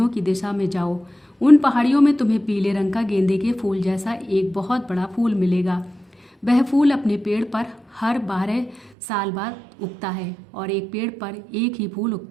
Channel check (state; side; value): drops out; left; at 8.9 s